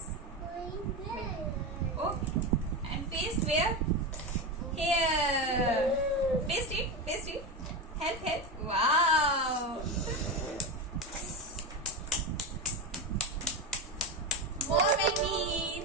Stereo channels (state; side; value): normal; both; correlation 0.17